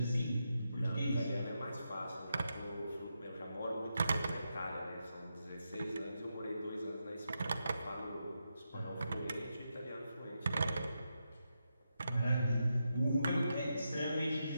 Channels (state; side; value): inverted; both; correlation -0.86